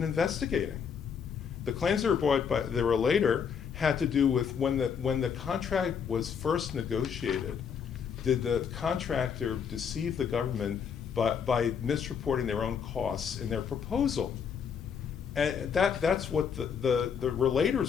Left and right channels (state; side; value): quieter; right; 7.0 dB